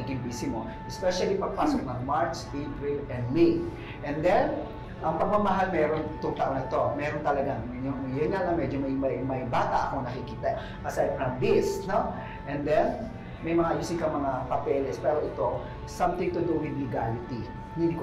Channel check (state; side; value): identical; both; correlation 1.00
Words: busy mo. Especially pagpasok ng March, April, and May. And then, ang pagmamahal meron itong taon na ito. Meron talaga. Yun nga lang, medyo may bata akong nakikita. Aside from this, no? And then, may mga ayusin ka mga papeles. Pero ito, something to do with legality. Hindi